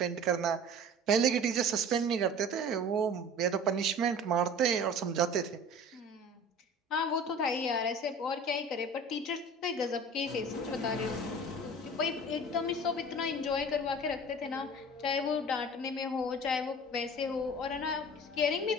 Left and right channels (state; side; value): normal; both; correlation 0.41